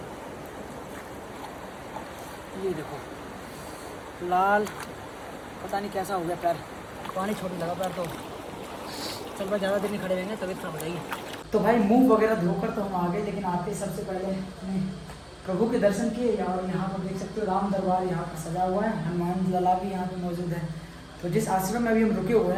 ये देखो लाल, पता नहीं कैसा हो गया पैर, पानी छोड़ने लगा पैर। तो चल भाई, ज़्यादा देर नहीं खड़े रहेंगे, तबीयत खराब हो जाएगी। तो भाई मुंह वगैरह धोकर तो हम आ गए, लेकिन आते सबसे पहले हमने प्रभु के दर्शन किए। और यहाँ पर देख सकते हो राम दरबार यहाँ पर सजा हुआ है, हनुमान लला भी यहाँ पर मौजूद है। तो जिस आश्रम में अभी हम रुके हुए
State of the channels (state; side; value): identical; both; correlation 1.00